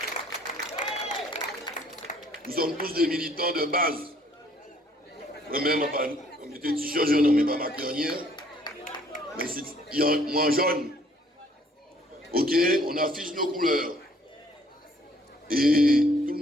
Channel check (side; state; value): both; normal; correlation 0.61